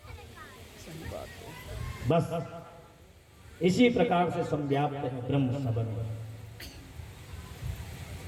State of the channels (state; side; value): identical; both; correlation 1.00